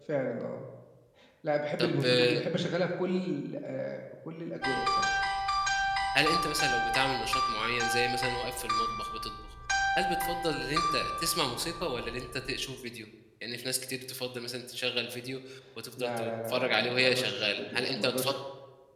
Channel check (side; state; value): both; identical; correlation 1.00